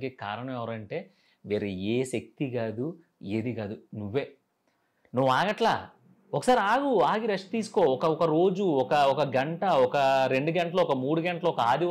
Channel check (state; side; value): identical; both; correlation 1.00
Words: కారణం ఎవరంటే వేరే ఏ శక్తి కాదు, ఏది కాదు, నువ్వే. నువ్వు ఆగట్లా. ఒకసారి ఆగి రెస్ట్ తీసుకో. ఒక రోజు, ఒక గంట, ఒక 2 గంటలు, ఒక 3 గంటలు, ఒక